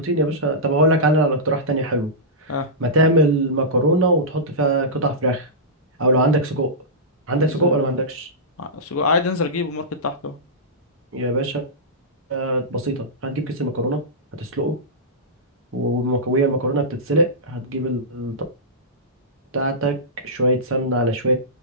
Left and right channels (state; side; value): normal; both; correlation -0.15